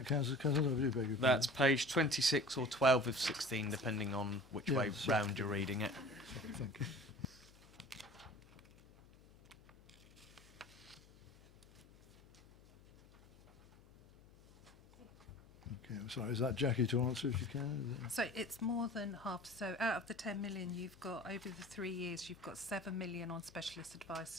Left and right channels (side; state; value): left; noise; hum, 26 dB below the sound